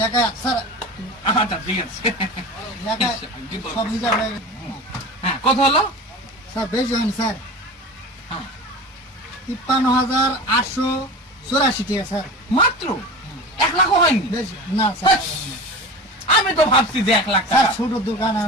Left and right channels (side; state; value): both; normal; correlation 0.32